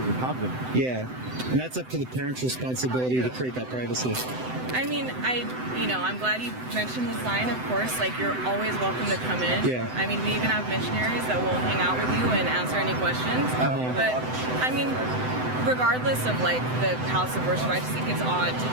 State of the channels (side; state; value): left; late; 7.9 ms